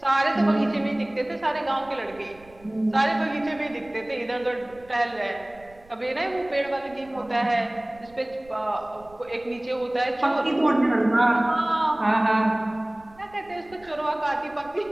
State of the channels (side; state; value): right; noise; rumble, 26 dB below the sound